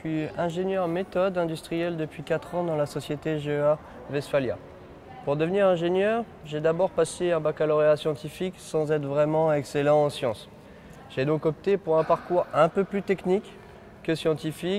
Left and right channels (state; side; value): identical; both; correlation 1.00